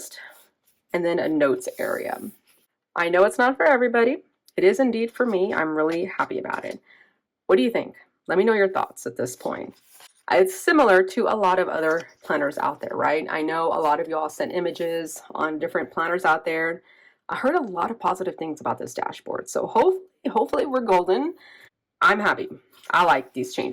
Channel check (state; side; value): identical; both; correlation 1.00